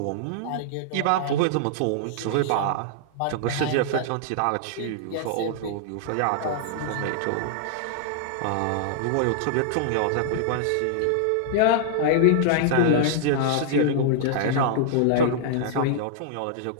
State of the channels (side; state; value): both; different; correlation -0.01